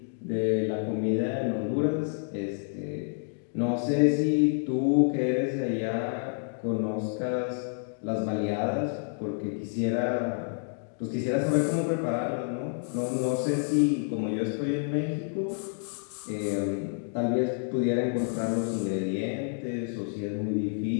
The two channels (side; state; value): right; silent; 58 dB below the other